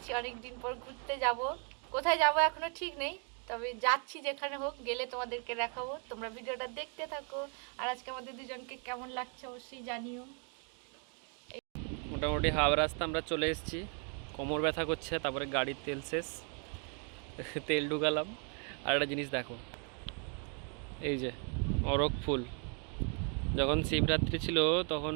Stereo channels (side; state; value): left; quieter; 39.7 dB